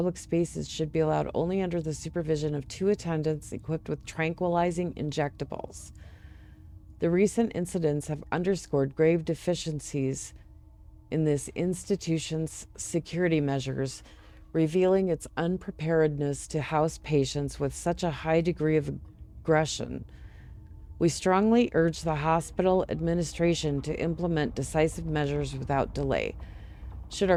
spaces should be allowed only under the supervision of 2 attendants equipped with tranquilizing injectables. The recent incidents have underscored grave deficiencies in this institution's security measures, revealing its unpreparedness to house patients with such a high degree of aggression. We strongly urge the hospital administration to implement decisive measures without delay. Should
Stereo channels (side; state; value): both; identical; correlation 1.00